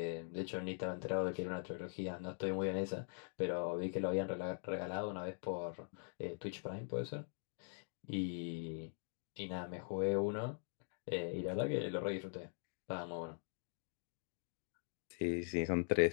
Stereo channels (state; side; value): silent; right; digital silence